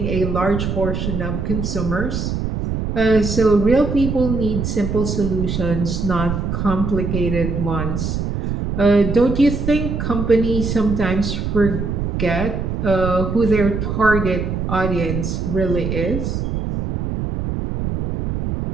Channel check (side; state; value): right; noise; rumble, 2 dB below the sound